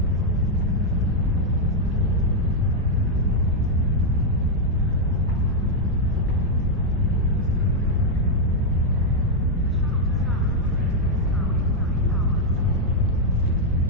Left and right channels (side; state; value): both; normal; correlation -0.01